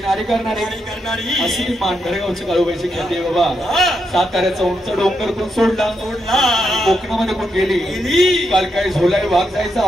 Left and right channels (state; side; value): normal; both; correlation 0.82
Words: करणारी करणारी अशी ती मांडरगावची काळूबाईची ख्याती आहे बाबा साताऱ्याचा उंच डोंगर कोण सोडला सोडला कोकणामध्ये कोण गेली काल काही झोलाई वाघ जायचा